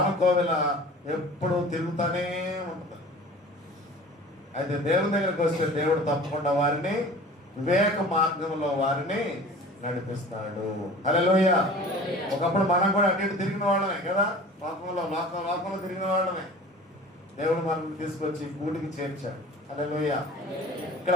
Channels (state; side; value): normal; both; correlation 0.42